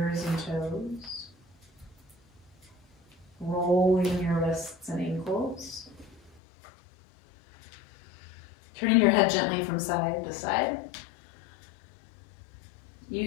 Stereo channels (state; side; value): drops out; right; at 6.4 s